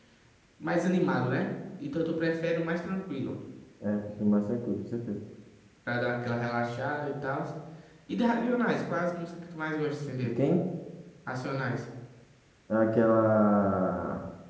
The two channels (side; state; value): both; identical; correlation 1.00